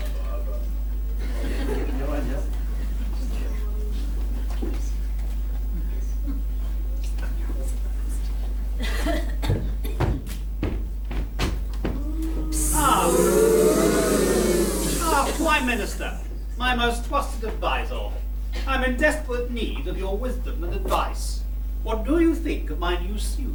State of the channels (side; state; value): both; identical; correlation 1.00